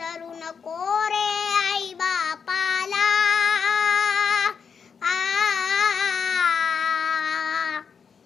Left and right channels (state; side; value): quieter; right; 6.3 dB